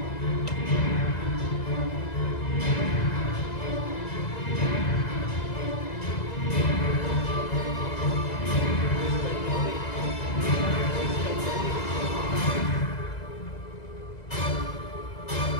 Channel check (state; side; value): late; right; 2.0 ms